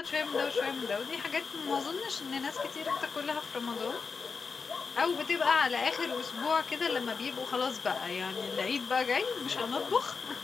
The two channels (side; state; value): right; quieter; 5.1 dB